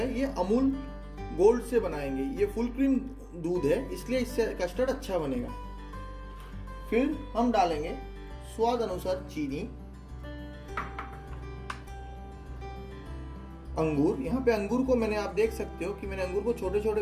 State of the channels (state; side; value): identical; both; correlation 1.00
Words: ये अमूल गोल्ड से बनाएंगे। ये फुल क्रीम दूध है इसलिए इससे कस्टर्ड अच्छा बनेगा। फिर हम डालेंगे स्वाद अनुसार चीनी, अंगूर। यहाँ पे अंगूर को मैंने, आप देख सकते हो कि मैंने अंगूर को छोटे छोटे